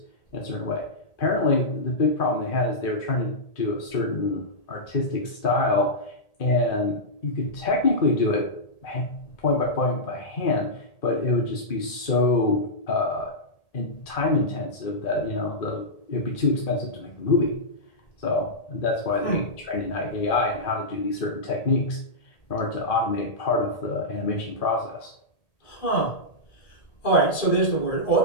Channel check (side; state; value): right; late; 1.8 ms